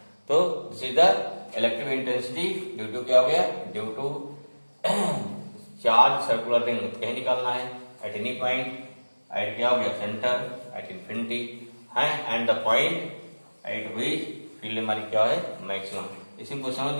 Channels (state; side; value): inverted; both; correlation -1.00